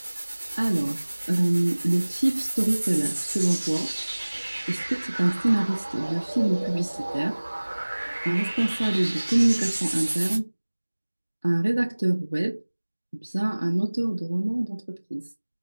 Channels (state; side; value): inverted; both; correlation -1.00